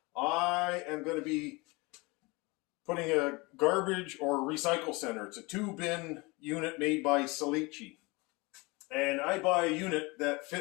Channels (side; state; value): right; quieter; 25.3 dB